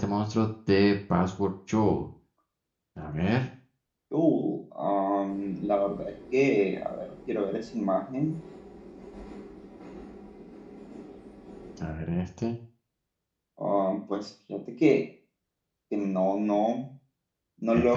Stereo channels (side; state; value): both; identical; correlation 1.00